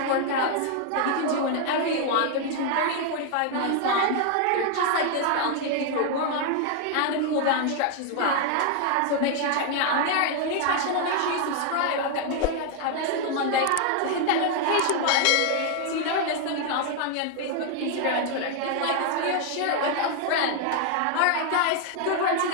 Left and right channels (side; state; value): both; different; correlation 0.00